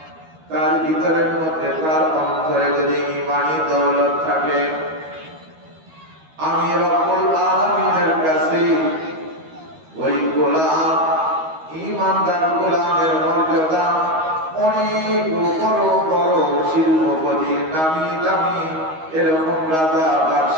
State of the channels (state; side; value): late; left; 13 ms